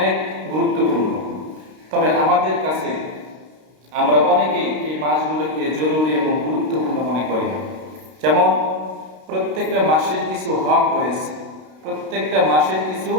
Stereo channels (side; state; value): left; late; 32 ms